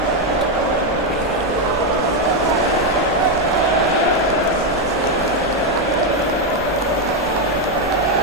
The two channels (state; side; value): normal; both; correlation 0.04